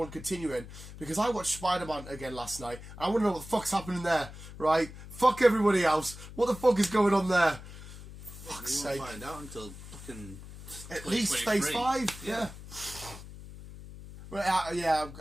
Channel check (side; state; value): left; noise; hum, 14 dB below the sound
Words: continuing, because I watched Spider-Man again last night. I want to know what the fuck's happening there, right? Fuck everybody else. What the fuck is going on there? Fuck's sake. We won't find out until fucking... At least Phase 5. Yeah. Right,